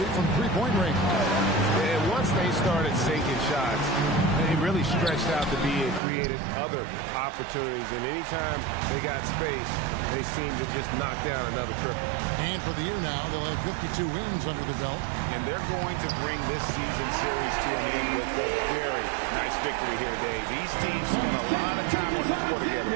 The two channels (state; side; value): drops out; left; at 6.0 s